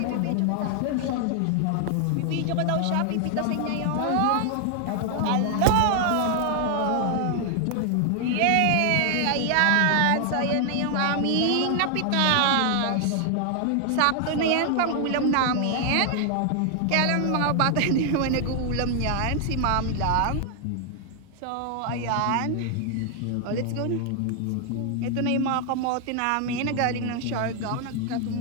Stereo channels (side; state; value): both; different; correlation 0.00